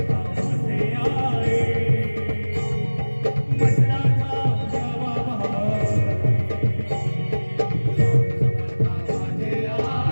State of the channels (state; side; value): inverted; both; correlation -1.00